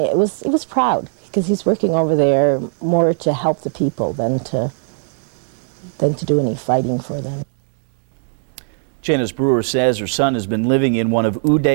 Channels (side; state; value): left; silent; digital silence